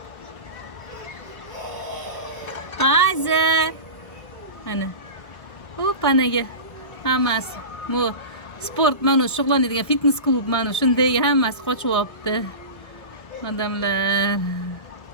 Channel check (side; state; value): right; late; 1.3 ms